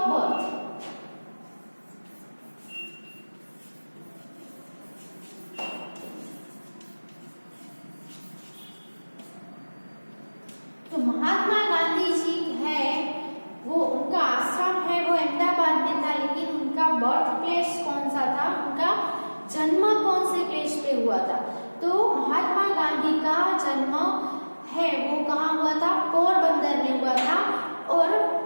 बर्थ। तो महात्मा गांधी जी है वो, उनका आश्रम है वो अहमदाबाद में था, लेकिन उनका बर्थ प्लेस कौन सा था, उनका जन्म कौन से प्लेस पे हुआ था? तो महात्मा गांधी का जन्म है वो कहाँ हुआ था? पोरबंदर में हुआ था। और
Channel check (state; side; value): inverted; both; correlation -1.00